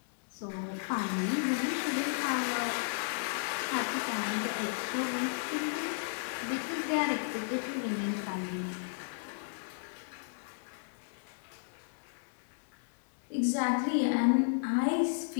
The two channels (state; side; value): silent; right; digital silence